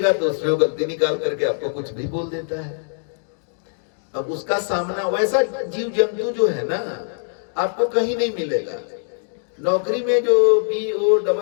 तो उसमें गलती निकाल करके आपको कुछ भी बोल देता है। अब उसका सामना, वैसा जीव जंतु जो है ना आपको कहीं नहीं मिलेगा। नौकरी में जो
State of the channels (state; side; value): silent; right; digital silence